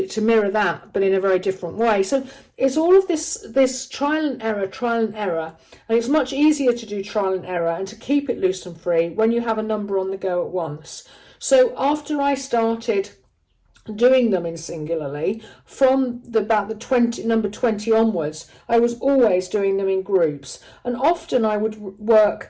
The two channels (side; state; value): both; identical; correlation 1.00